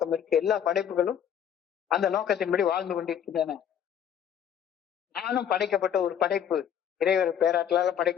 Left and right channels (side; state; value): right; quieter; 9.1 dB